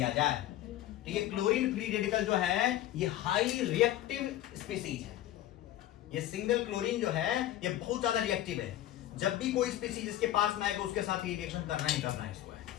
जाए तो ये क्लोरीन फ्री रेडिकल जो है ये हाईली रिएक्टिव स्पीसीज है। ये सिंगल क्लोरीन जो है ये बहुत ज्यादा रिएक्टिव है। जब भी कोई स्पीसीज इसके पास में आएगा उसके साथ ये रिएक्शन करना ही करना है इसको है।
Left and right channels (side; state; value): right; quieter; 13.5 dB